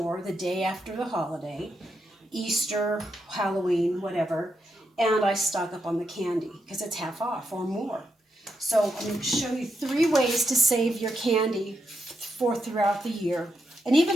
the day after the holiday, Easter, Halloween, whatever, and I stock up on the candy because it's half off or more. So I'm going to show you 3 ways to save your candy for throughout the year and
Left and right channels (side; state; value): both; normal; correlation 0.84